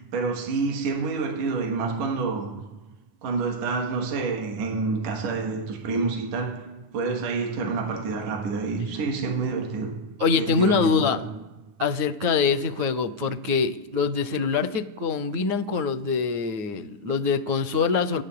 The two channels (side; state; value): left; late; 9.9 ms